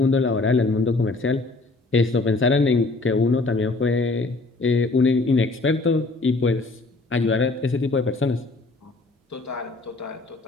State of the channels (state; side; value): quieter; right; 3.4 dB